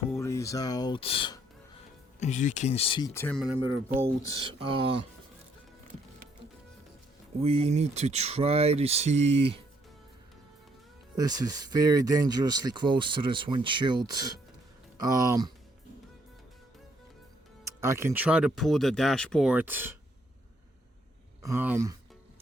these out. As you can see, 10mm bolts. We need to try to see. This is very dangerously close to this windshield. I can try to pull the dashboard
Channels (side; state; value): both; normal; correlation 0.69